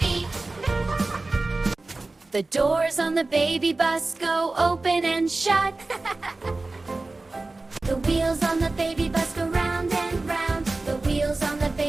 The doors on the baby bus go open and shut. The wheels on the baby bus go round and round. The wheels on the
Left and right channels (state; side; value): quieter; left; 3.3 dB